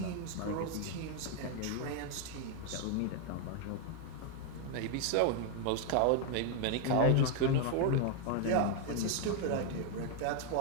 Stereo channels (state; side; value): different; both; correlation 0.00